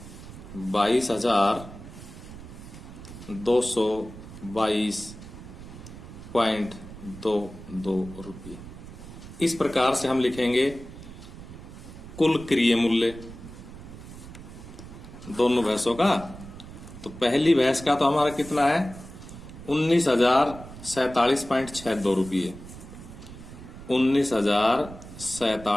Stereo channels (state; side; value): noise; right; rumble, 15 dB below the sound